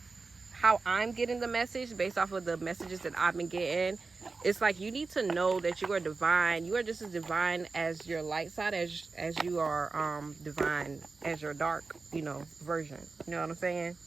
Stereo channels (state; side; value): quieter; left; 4.1 dB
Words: how I'm getting the message based off of the messages that I've been getting. It's like you need to know that you are divine. You are just as divine as your light side as you are divine as your dark, version. You know what I'm saying?